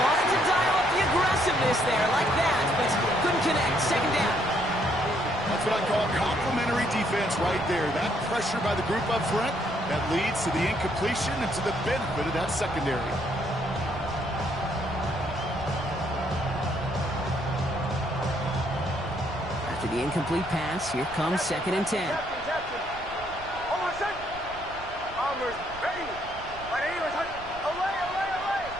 to dial up the aggressiveness there like that, but couldn't connect. Second down. That's what I call complimentary defense right there. That pressure by the group up front, that leads to the incompletion and to the benefit of that secondary. After the incomplete pass, here comes 2nd and 10. Captain. Oh, my son. Bombers, ready. 180. Away.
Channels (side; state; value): right; noise; rumble, 17 dB below the sound